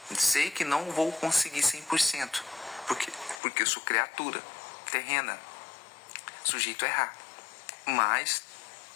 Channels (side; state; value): right; drops out; at 3.4 s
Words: Sei que não vou conseguir 100%, porque eu sou criatura terrena, sujeito a errar. Mas,